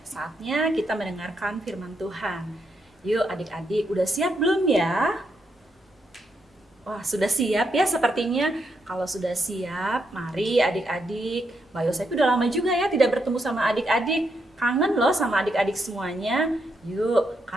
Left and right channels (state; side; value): normal; both; correlation 0.80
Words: Saatnya kita mendengarkan firman Tuhan. Yuk adik-adik, udah siap belum ya? Wah, sudah siap ya sepertinya. Kalau sudah siap, mari adik-adik. Mbak Yosepi udah lama juga ya tidak bertemu sama adik-adik. Kangen loh sama adik-adik semuanya. Yuk,